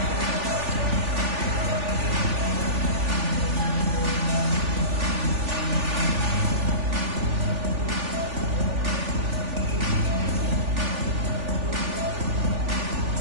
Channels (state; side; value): late; left; 3.4 ms